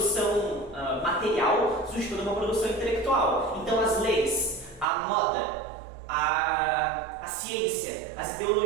material, surge toda uma produção intelectual. Então, Então as leis, a moda, a ciência, as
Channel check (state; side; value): drops out; left; at 4.9 s